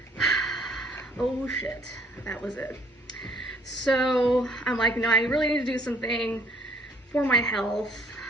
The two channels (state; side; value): normal; both; correlation 0.60